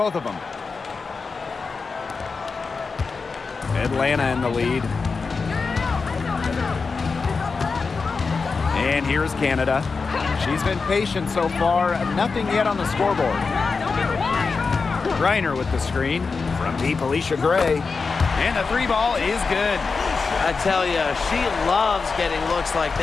of them. Atlanta in the lead. And here's Canada. She's been patient so far. Nothing yet on the scoreboard. Reiner with the screen. From deep, Alicia Gray. And the 3-ball is good. I tell you, she loves getting looks like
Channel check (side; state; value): right; quieter; 4.6 dB